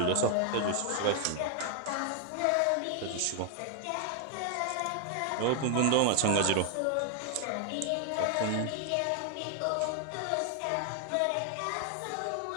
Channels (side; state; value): both; different; correlation 0.00